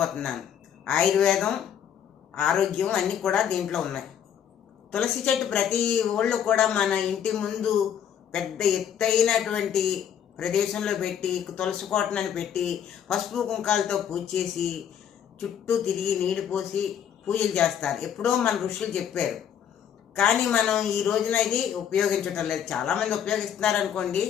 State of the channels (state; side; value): quieter; right; 8.9 dB